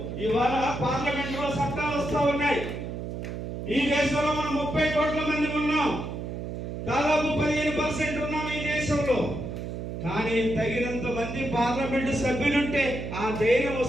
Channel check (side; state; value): right; noise; hum, 6 dB below the sound